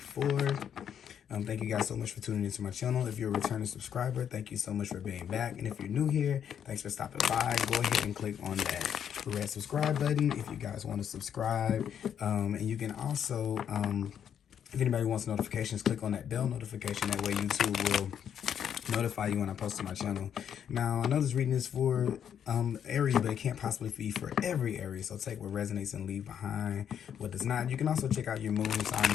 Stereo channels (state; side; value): quieter; right; 8.7 dB